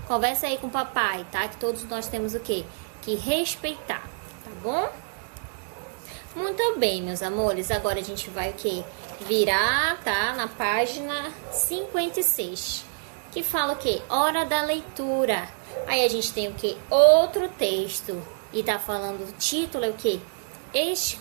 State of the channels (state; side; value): silent; left; digital silence